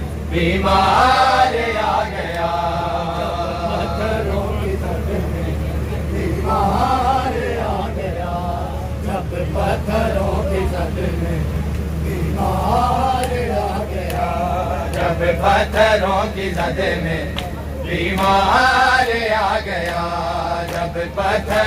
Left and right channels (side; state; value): both; identical; correlation 1.00